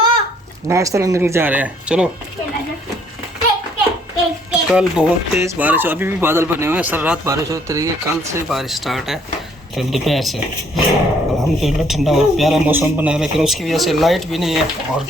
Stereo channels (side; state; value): both; normal; correlation 0.64